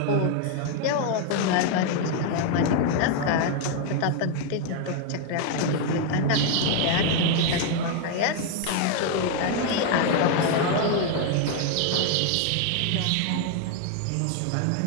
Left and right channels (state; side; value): different; both; correlation 0.00